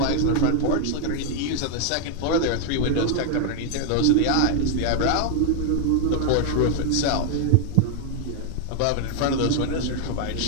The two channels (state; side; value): different; both; correlation 0.00